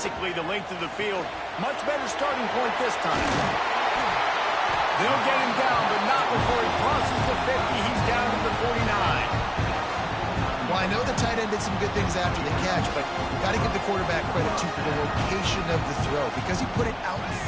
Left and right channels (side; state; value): both; identical; correlation 1.00